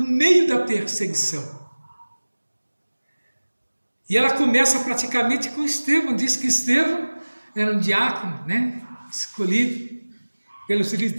meio da perseguição. E ela começa praticamente com Estevão. Diz que Estevão era um diácono, né, escolhido pelos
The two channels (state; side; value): inverted; both; correlation -1.00